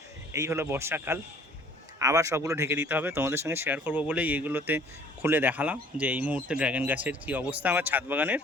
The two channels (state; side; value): normal; both; correlation 0.54